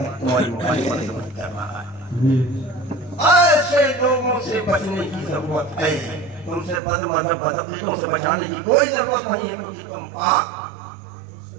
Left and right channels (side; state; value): left; drops out; at 6.8 s